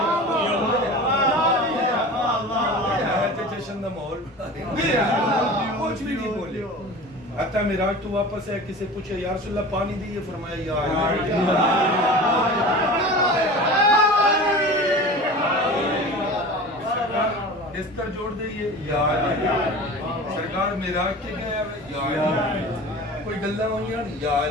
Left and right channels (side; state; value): both; normal; correlation 0.36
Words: جشن دا ماحول کچھ بھی نہیں بولے حتیٰ معراج تو واپس ہے کسی پوچھے یا رسول اللہ پانی دیئے فرمایا یا علی بستر جوڑ دئیے یا علی سرکار معراج کے گیا یا علی کوئی گلہ ہوئی یا